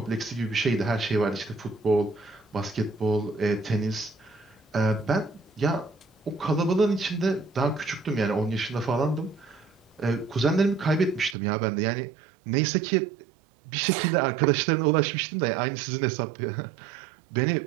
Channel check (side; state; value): left; drops out; at 11.4 s